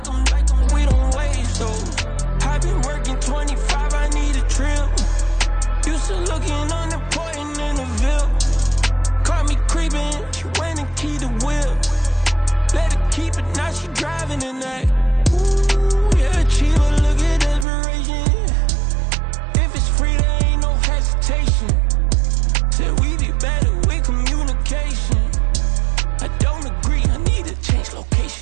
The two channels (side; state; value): left; drops out; at 17.7 s